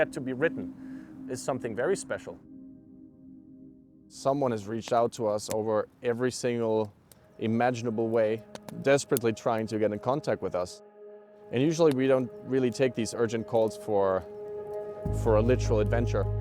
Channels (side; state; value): both; identical; correlation 1.00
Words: to be written is something very special. Someone has reached out to us over every single imaginable way, desperately trying to get in contact with us. And usually we don't really take these urgent calls for a literal adventure.